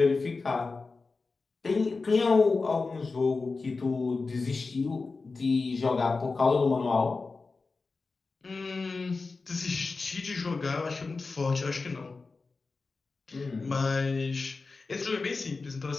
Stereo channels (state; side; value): quieter; right; 4.1 dB